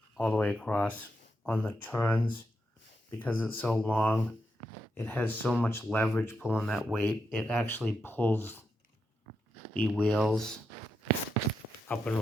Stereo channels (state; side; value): normal; both; correlation 0.84